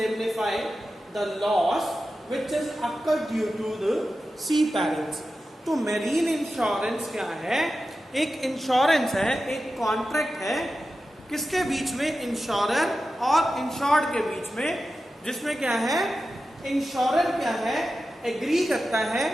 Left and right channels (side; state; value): both; normal; correlation 0.93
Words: the loss which is occurred due to the sea perils. तो marine insurance क्या है? एक insurance है, एक contract है किसके बीच में? इंश्योरर और इंश्योर्ड के बीच में, जिसमें क्या है, इंश्योरर क्या है, एग्री करता है